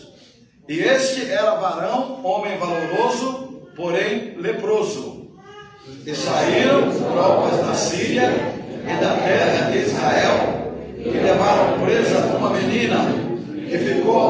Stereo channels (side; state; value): both; identical; correlation 1.00